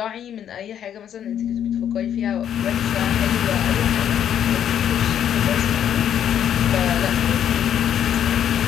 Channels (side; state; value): right; quieter; 9.7 dB